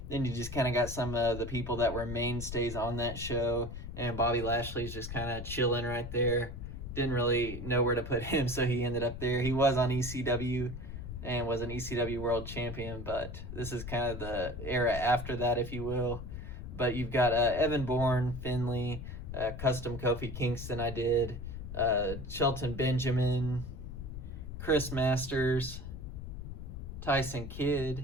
Then you just kind of got some of the people that were mainstays on that show. And Bobby Lashley's just kind of chilling right there. Didn't really know where to put him, so he ended up there. He was on ECW and was an ECW world champion, but this is kind of the era after that, if you will. But you've got Evan Bourne, Finley, custom Kofi Kingston I did, Shelton Benjamin, Chris Masters, Tyson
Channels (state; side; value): noise; left; rumble, 8 dB below the sound